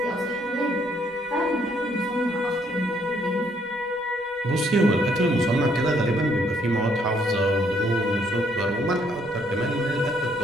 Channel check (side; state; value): both; normal; correlation 0.69